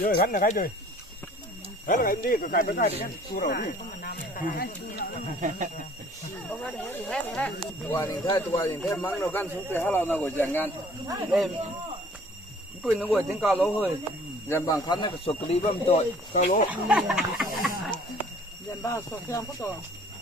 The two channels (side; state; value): both; normal; correlation 0.54